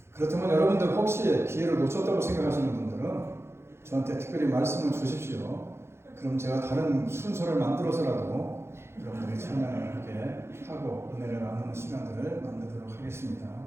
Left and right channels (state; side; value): late; left; 0.12 ms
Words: 그렇다면 여러분들 혹시 기회를 놓쳤다고 생각하시는 분들은 저한테 특별히 말씀을 주십시오. 그럼 제가 다른 순서를 만들어서라도 여러분들이 찬양을 하게 하고 은혜를 나누는 시간들을 만들도록 하겠습니다.